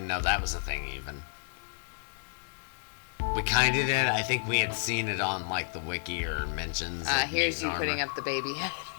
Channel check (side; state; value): right; silent; 57 dB below the other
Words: know that was a thing even. We kind of did. I think we had seen it on like the wiki or mentions. of Here's you mutant putting armor. up the baby head.